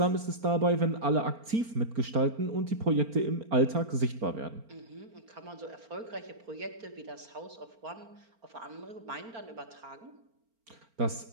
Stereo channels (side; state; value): left; late; 4.4 ms